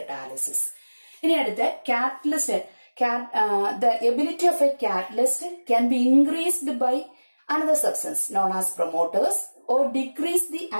ഇനി അടുത്ത catalyst. The ability of a catalyst can be increased by another substance known as promoters or decrease the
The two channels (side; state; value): both; inverted; correlation -1.00